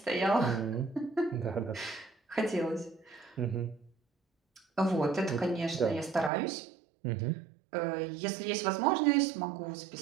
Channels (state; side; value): drops out; left; at 6.3 s